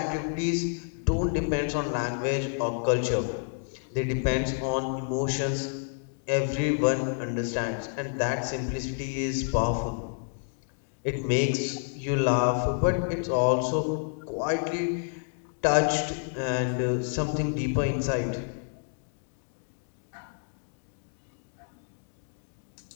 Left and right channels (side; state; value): right; silent; digital silence